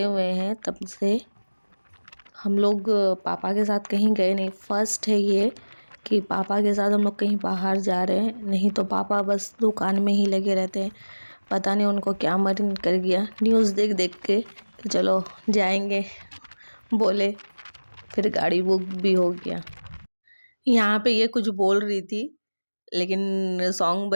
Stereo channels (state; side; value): inverted; both; correlation -1.00